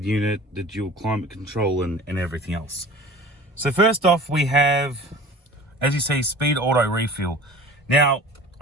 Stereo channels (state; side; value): normal; both; correlation 0.42